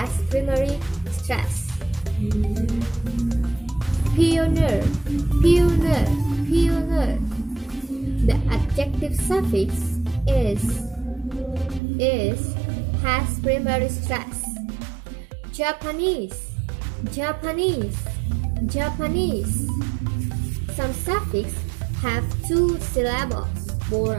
primary stress. Pioneer, pioneer, pioneer. The adjective suffix is has primary stress. Japanese, Japanese, Japanese. Some suffix have two syllables,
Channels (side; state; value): left; drops out; at 11.8 s